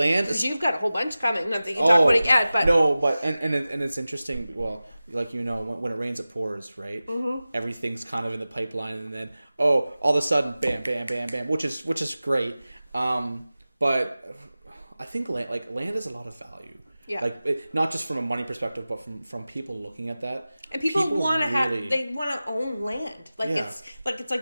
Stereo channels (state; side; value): inverted; both; correlation -0.96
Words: is... You've got a whole bunch coming. Not that you can talk about it yet, but... No, but... And it's interesting. Well, like, when it rains, it pours, right? Mm-hmm. Everything's kind of in the pipeline, and then, all of a sudden, bam, bam, bam, bam, which is great. But I think land has a lot of value. Yeah. Like, not just from a money perspective, but from people looking at that. And people want to they want to own land. Like, it's like